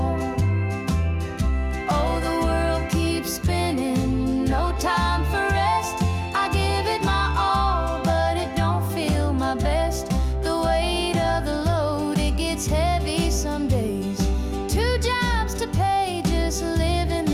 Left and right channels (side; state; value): both; identical; correlation 1.00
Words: Oh, the world keeps spinning, no time for rest. I give it my all, but it don't feel my best. The weight of the load, it gets heavy some days. 2 jobs to pay, just living